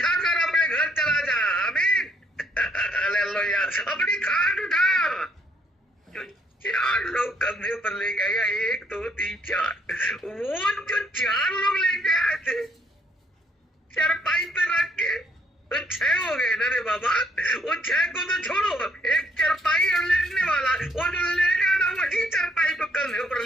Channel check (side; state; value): both; normal; correlation 0.69